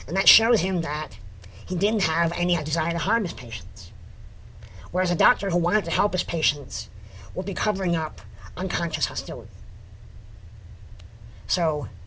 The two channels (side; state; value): both; identical; correlation 1.00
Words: and that showed him that he didn't have any desire to harm his patients. Whereas a doctor who wanted to help his patients would be covering up unconscious hostility. So